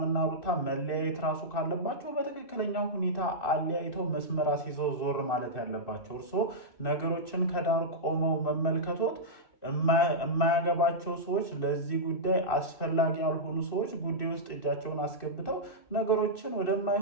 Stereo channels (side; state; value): right; late; 2.6 ms